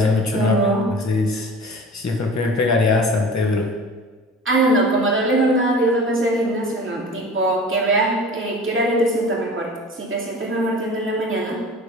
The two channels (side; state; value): both; normal; correlation 0.39